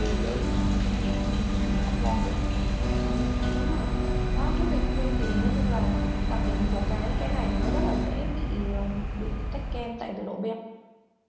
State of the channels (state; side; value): identical; both; correlation 1.00